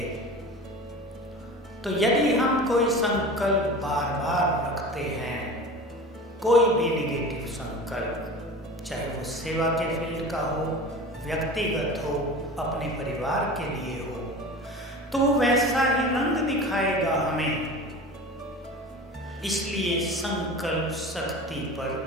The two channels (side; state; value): both; normal; correlation 0.35